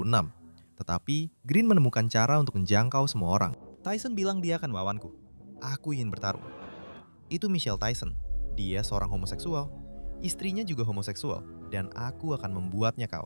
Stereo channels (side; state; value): both; inverted; correlation -1.00